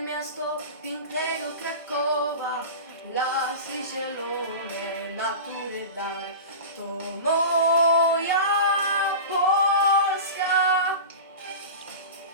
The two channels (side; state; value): both; inverted; correlation -0.31